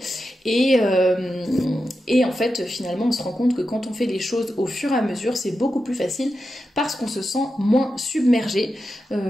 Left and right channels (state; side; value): normal; both; correlation 0.89